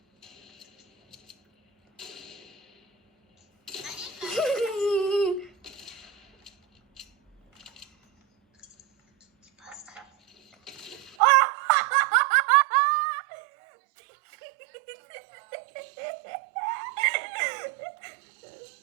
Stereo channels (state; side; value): drops out; left; at 11.2 s